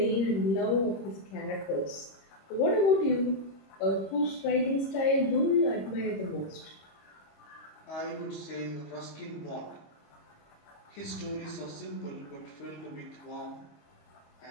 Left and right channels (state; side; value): late; right; 25 ms